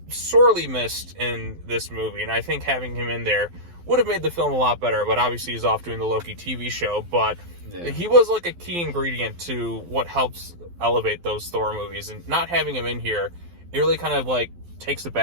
sorely missed in this movie, and I think having him in there would have made the film a lot better, but obviously he's off doing the Loki TV show, but he was like a key ingredient to what helps elevate those Thor movies, and not having him in here, it really kind of like takes a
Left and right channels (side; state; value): left; late; 12 ms